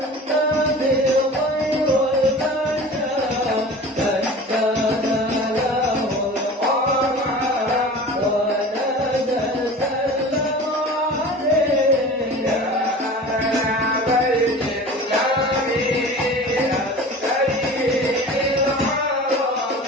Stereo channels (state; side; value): normal; both; correlation 0.38